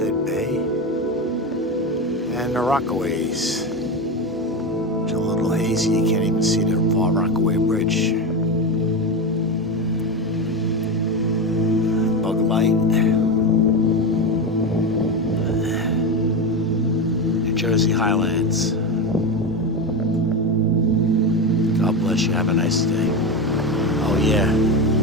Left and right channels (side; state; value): both; normal; correlation 0.16